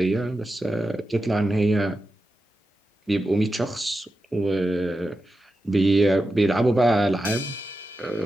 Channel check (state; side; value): normal; both; correlation 0.90